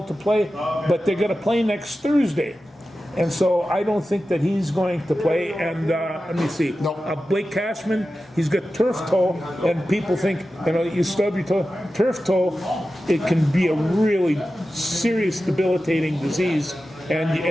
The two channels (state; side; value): normal; both; correlation 0.93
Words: to play, but they're going to play next Thursday. And so I don't think that he's going to play. And let me see. No. Blake Cashman, he's got turf toe, and people think, you stub your toe. Turf toe, it can be a really serious, debilitating disease, and